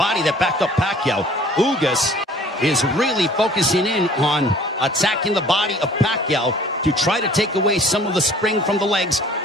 that backed up Pacquiao. Ugas is really focusing in on attacking the body of Pacquiao to try to take away some of the spring from the legs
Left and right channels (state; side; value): normal; both; correlation 0.52